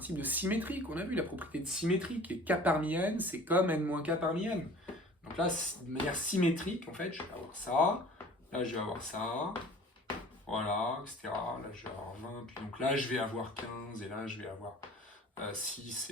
de symétrie qu'on a vu, la propriété de symétrie, qui est K parmi N, c'est comme N moins K parmi N. Donc là, de manière symétrique, en fait, je vais avoir ça, là je vais avoir ça, voilà, etc. Là je vais avoir 20, puis donc là je vais avoir 15, et là je vais avoir 6,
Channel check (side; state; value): both; normal; correlation 0.46